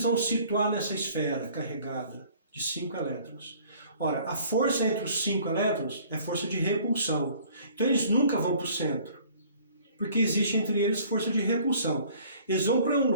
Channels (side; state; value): both; inverted; correlation -0.54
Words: vão situar nessa esfera carregada de 5 elétrons? Ora, a força entre os 5 elétrons é força de repulsão. Então eles nunca vão para o centro, porque existe entre eles força de repulsão. Eles vão para um